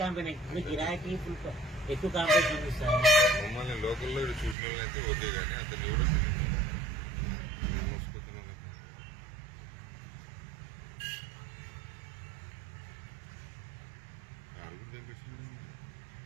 ఇప్పుడు గిరాకీ ఫుల్ ఎక్కువ కాంపిటీషన్ ఉంది సార్ మమ్మల్ని లోకల్లో చూసిన వాళ్ళు అయితే ఓకే కానీ అతను ఎవరో మోసుకుతున్నావు కదా కారు కూడా తెప్పించినాడు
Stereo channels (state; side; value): drops out; left; at 4.5 s